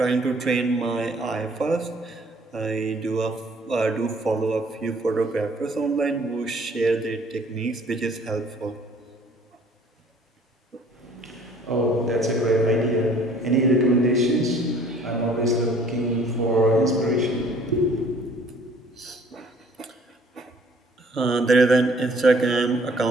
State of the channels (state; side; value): normal; both; correlation 0.56